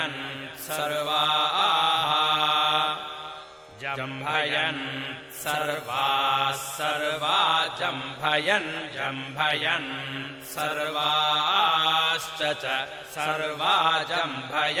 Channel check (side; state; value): both; identical; correlation 1.00